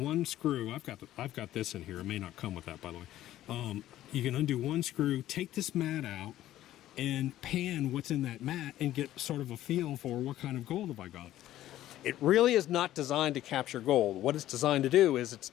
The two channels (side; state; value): right; quieter; 13.6 dB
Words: screw. I've got this in here. It may not come with that, by the way. You can undo one screw, take this mat out, and pan what's in that mat and get sort of a feel for what kind of gold have I got. It really is not designed to capture gold. What it's designed to do is it's